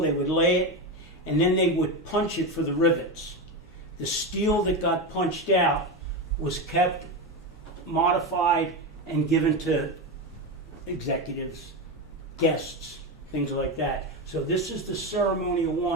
they would lay it, and then they would punch it for the rivets. The steel that got punched out was kept, modified, and given to executives, guests, things like that. So this is the ceremonial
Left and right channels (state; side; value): normal; both; correlation 0.15